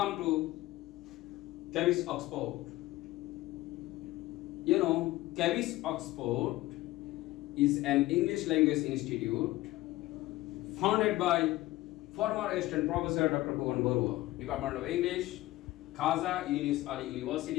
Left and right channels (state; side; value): quieter; right; 17.5 dB